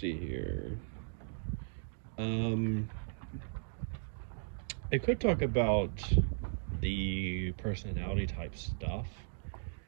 here. Um I could talk about the personality type stuff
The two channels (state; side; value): silent; left; digital silence